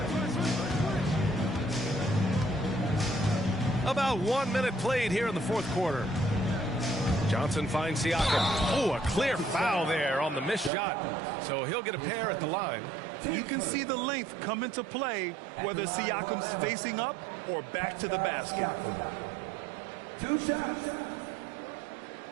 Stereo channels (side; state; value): left; drops out; at 10.7 s